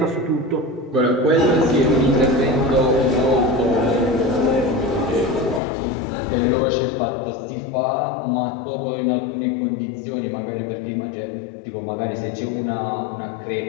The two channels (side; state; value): right; drops out; at 5.6 s